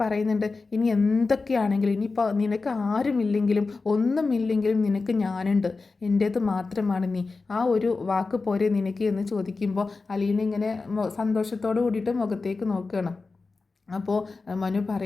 പറയുന്നുണ്ട്, ഇനി എന്തൊക്കെയാണെങ്കിലും, ഇനിയിപ്പോൾ നിനക്ക് ആരുമില്ലെങ്കിലും ഒന്നുമില്ലെങ്കിലും നിനക്ക് ഞാനുണ്ട്, എൻ്റേത് മാത്രമാണ് നീ, ആ ഒരു വാക്ക് പോരെ നിനക്ക് എന്ന് ചോദിക്കുമ്പോൾ അലീന ഇങ്ങനെ സന്തോഷത്തോട് കൂടിയിട്ട് മുഖത്തേക്ക് നോക്കുകയാണ്. അപ്പോൾ മനു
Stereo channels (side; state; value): right; quieter; 4.0 dB